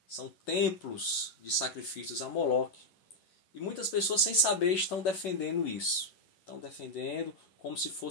São templos de sacrifícios a Moloque. E muitas pessoas, sem saber, estão defendendo isso. Estão defendendo como se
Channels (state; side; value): late; right; 11 ms